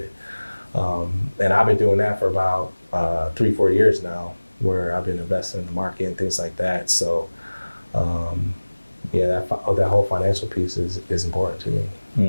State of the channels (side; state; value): both; inverted; correlation -1.00